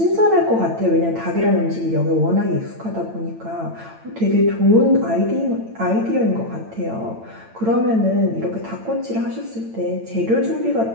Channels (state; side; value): late; left; 8.9 ms